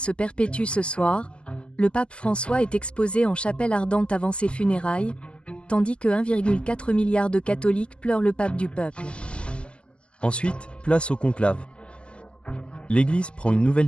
perpétuent ce soir. Le pape François est exposé en chapelle ardente avant ses funérailles, tandis que 1,4 milliard de catholiques pleurent le pape du peuple. Ensuite, place au conclave. L'Église prend une nouvelle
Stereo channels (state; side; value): late; right; 0.056 ms